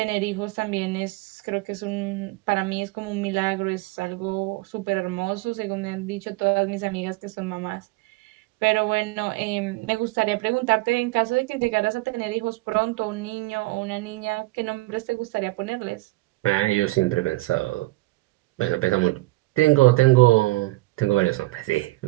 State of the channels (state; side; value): quieter; left; 20.8 dB